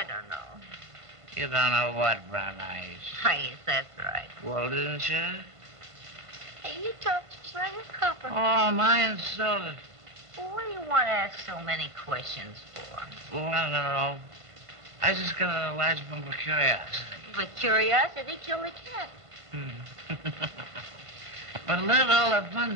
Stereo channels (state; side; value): late; left; 1.5 ms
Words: don't know. You don't know what, Brown Eyes. Yes, that's right. Well, didn't you? Hey, you talk just like a copper. Oh, am I insulted? Well, what do you want to ask so many questions for? Well, I don't know. I just got a large bump of curiosity. But curiosity killed the cat. But look at all the fun